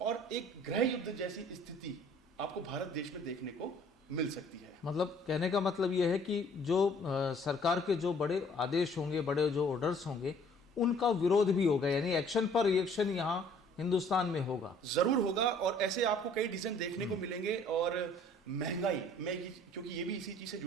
एक गृह युद्ध जैसी स्थिति आपको भारत देश में देखने को मिल सकती है। मतलब कहने का मतलब यह है कि जो सरकार के जो बड़े आदेश होंगे, बड़े जो ऑर्डर्स होंगे, उनका विरोध भी होगा, यानी एक्शन पर रिएक्शन यहाँ हिंदुस्तान में होगा, जरूर होगा। और ऐसे आपको कई डिसीजन देखने को मिलेंगे। और महंगाई में, क्योंकि ये भी इसी चीज से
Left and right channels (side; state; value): both; normal; correlation 0.56